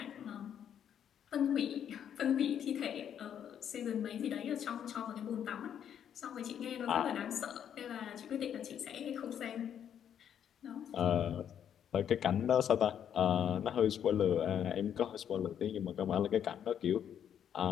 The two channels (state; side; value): quieter; right; 9.1 dB